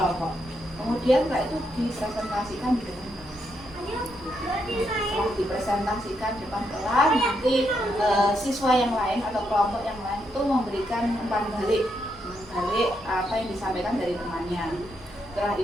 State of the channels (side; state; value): both; normal; correlation 0.79